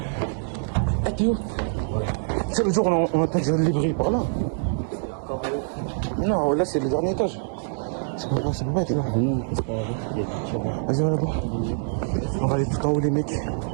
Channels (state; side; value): silent; left; digital silence